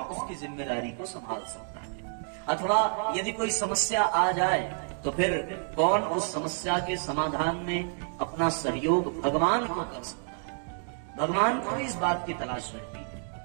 उसकी जिम्मेदारी को संभाल सकता है। अथवा यदि कोई समस्या आ जाए तो फिर कौन उस समस्या के समाधान में अपना सहयोग भगवान को कर सकता है। भगवान को इस बात की तलाश रहती है।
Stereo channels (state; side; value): silent; left; 58 dB below the other